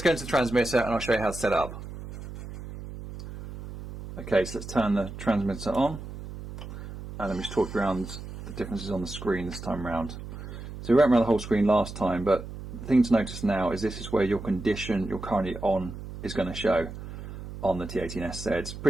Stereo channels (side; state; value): right; noise; hum, 11 dB below the sound